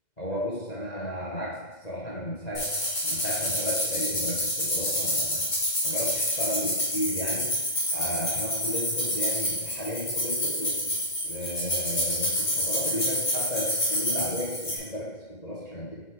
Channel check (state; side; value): late; right; 2.0 ms